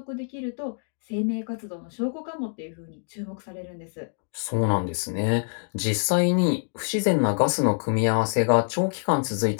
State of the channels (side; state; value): right; silent; 61 dB below the other